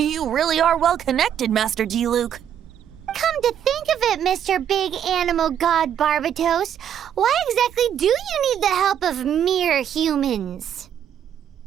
really are well connected, Master Diluc. Come to think of it, Mr. Big Animal God Barbatos, why exactly do you need the help of mere humans?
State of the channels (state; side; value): quieter; left; 9.5 dB